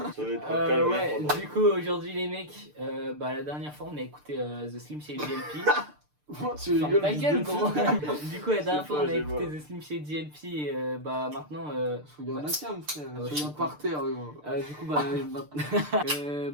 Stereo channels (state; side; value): late; left; 6.7 ms